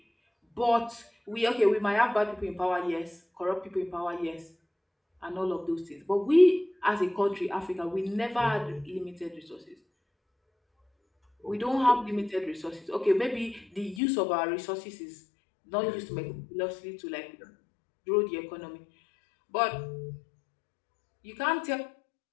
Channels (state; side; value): drops out; right; at 14.0 s